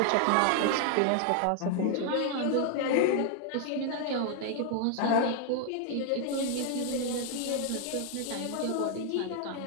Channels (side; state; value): both; different; correlation 0.00